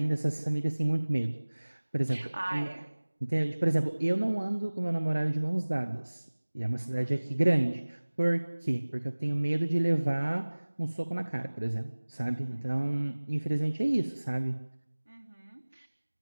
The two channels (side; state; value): both; inverted; correlation -1.00